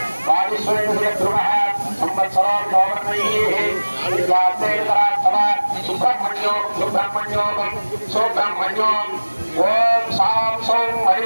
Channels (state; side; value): inverted; both; correlation -1.00